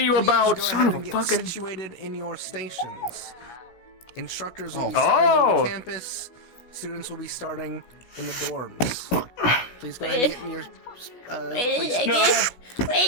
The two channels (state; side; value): late; right; 16 ms